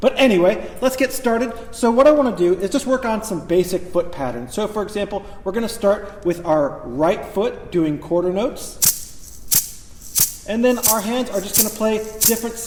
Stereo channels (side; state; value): both; identical; correlation 1.00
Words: anyway, let's get started. So what I want to do is just work on some basic foot patterns. So for example, we're going to start with our right foot doing quarter notes. And then our hands are just going to play different